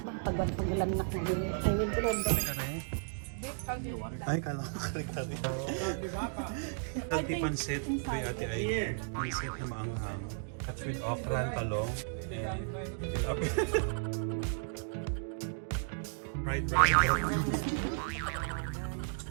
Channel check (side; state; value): left; silent; digital silence